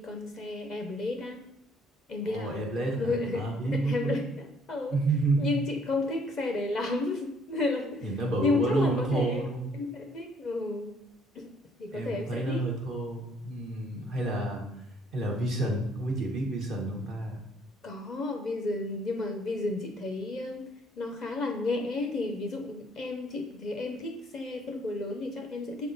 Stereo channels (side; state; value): both; normal; correlation 0.63